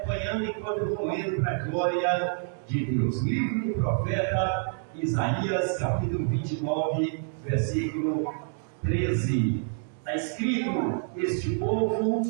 enquanto eu vou lendo para a glória de Deus. Livro do profeta Isaías, capítulo 29, versículo 13. Está escrito: este povo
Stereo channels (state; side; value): silent; left; 60 dB below the other